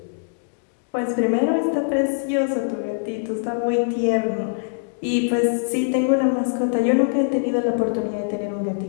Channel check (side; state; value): right; silent; digital silence